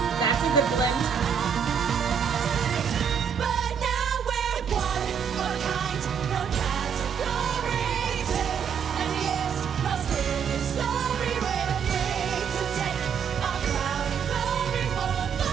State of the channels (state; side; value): quieter; left; 7.3 dB